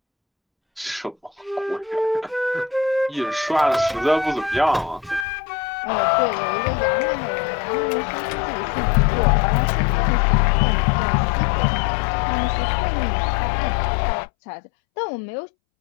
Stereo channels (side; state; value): right; drops out; at 5.2 s